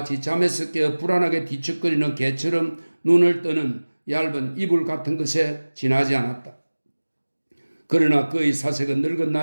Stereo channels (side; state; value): both; inverted; correlation -1.00